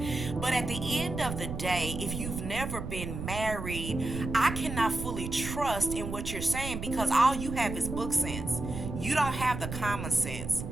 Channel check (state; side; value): noise; right; rumble, 6 dB below the sound